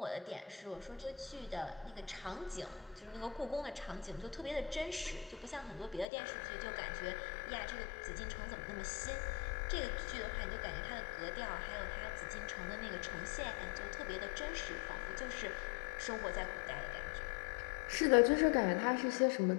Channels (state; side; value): drops out; right; at 6.1 s